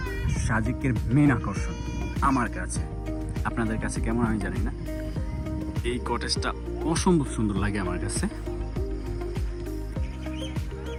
সাজেকের মেন আকর্ষণ আমার কাছে। আপনাদের কাছে কেমন আমি জানি না। এই কটেজটা অসম্ভব সুন্দর লাগে আমার কাছে।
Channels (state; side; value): identical; both; correlation 1.00